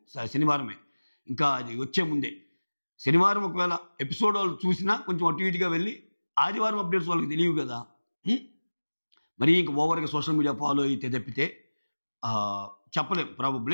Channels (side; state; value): both; inverted; correlation -1.00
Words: శనివారమే, ఇంకా అది వచ్చే ముందే. శనివారం ఒకవేళ ఎపిసోడ్ వాళ్ళు చూసినా కొంచెం అటు ఇటుగా వెళ్ళి ఆదివారం అప్డేట్స్ వాళ్ళకి తెలియవు కదా, మరీ ఇంకా ఓవర్గా సోషల్ మీడియా ఫాలో అయితే తప్పితే చెప్పలేం.